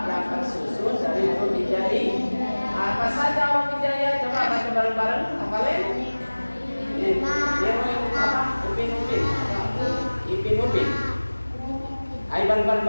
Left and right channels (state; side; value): inverted; both; correlation -1.00